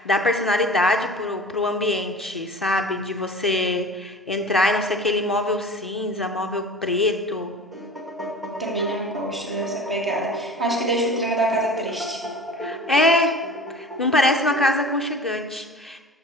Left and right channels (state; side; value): normal; both; correlation 0.39